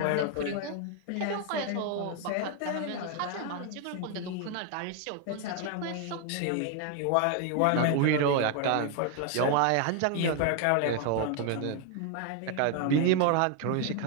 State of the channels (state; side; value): different; both; correlation 0.01